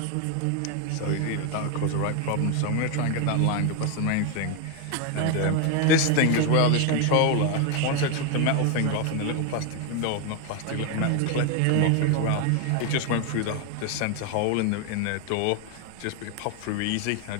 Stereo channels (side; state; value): both; different; correlation 0.01